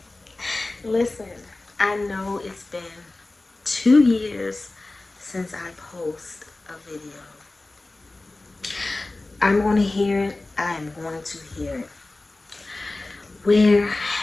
Listen, I know it's been 2 years since I post a video. I'm going to hear it. I'm going to hear it. Where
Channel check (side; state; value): right; quieter; 3.0 dB